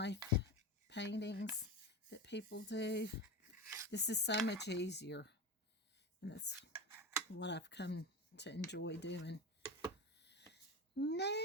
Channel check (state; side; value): normal; both; correlation 0.24